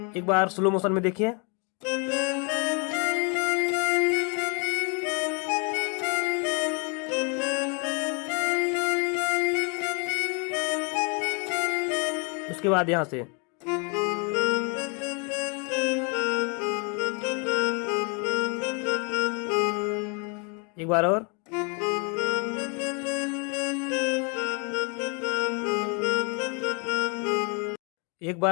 एक बार स्लो मोशन में देखिए। उसके बाद यहां से एक बार और। एक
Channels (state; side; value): quieter; right; 34.4 dB